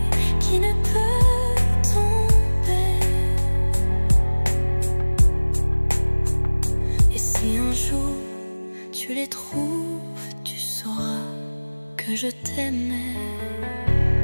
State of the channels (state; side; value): inverted; both; correlation -1.00